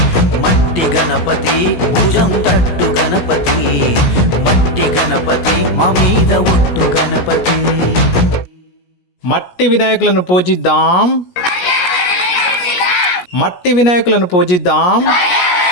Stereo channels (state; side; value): late; right; 17 ms